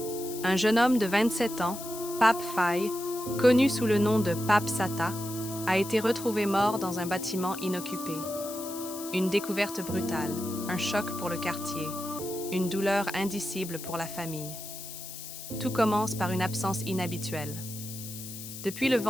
Un jeune homme de 27 ans, Pape Faye, connu sous le nom de Pape Sata, a été retrouvé mort dans un bâtiment inoccupé. Une découverte brutale, un choc pour le quartier, une douleur indicible pour la famille. Tout commence par une absence inhabituelle. Depuis le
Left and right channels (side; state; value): left; noise; hiss, 11 dB below the sound